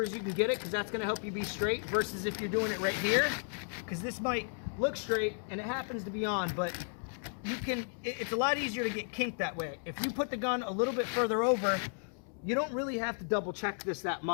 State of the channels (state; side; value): silent; right; 55 dB below the other